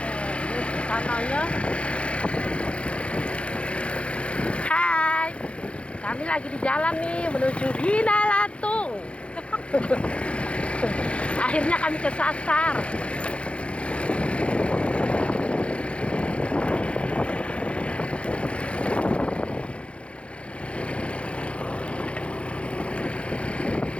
Sananya. Hai, kami lagi di jalan nih menuju Bina Latung. Akhirnya kami kesasar.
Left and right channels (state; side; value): late; right; 0.060 ms